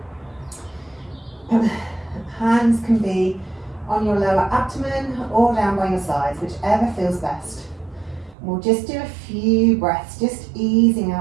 Hands can be on your lower abdomen or down by your sides, whichever feels best. We'll just do a few breaths, just easing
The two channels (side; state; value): left; drops out; at 8.3 s